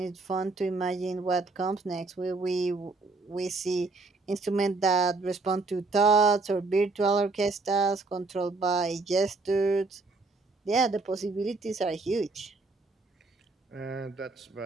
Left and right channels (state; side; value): quieter; left; 3.6 dB